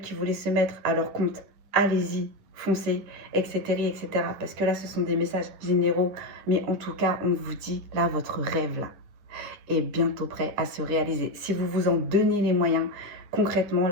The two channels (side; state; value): left; late; 10 ms